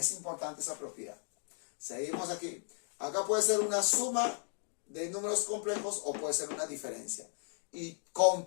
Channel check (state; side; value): silent; right; 54 dB below the other